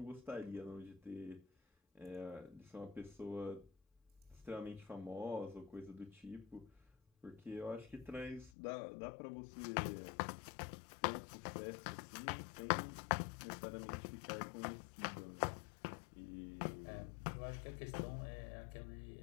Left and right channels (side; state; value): right; drops out; at 8.5 s